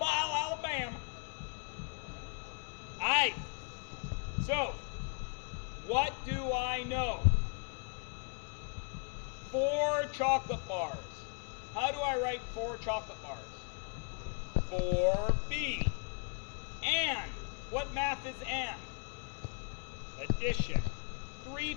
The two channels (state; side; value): quieter; right; 39.3 dB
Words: All right. So, what do I know? 4 chocolate bars. How do I write 4 chocolate bars? 4B. And. What math is and? Addition. 3